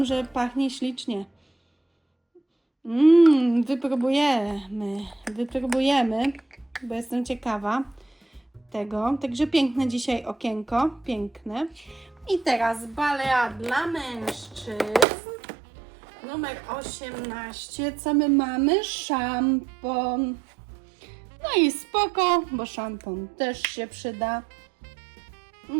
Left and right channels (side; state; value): left; drops out; at 15.1 s